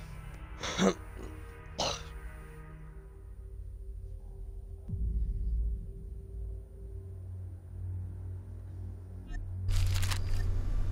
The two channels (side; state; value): both; identical; correlation 1.00